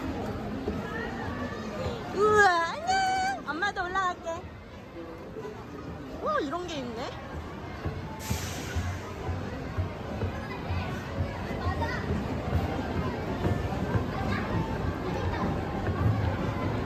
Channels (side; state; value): both; identical; correlation 1.00